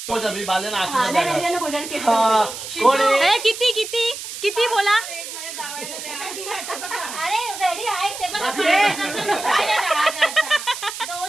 किती किती किती बोला. अरे रेडी आहे ते पण 2000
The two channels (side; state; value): right; noise; hiss, 9 dB below the sound